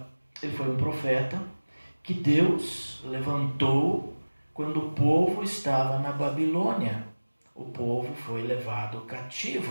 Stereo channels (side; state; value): both; inverted; correlation -1.00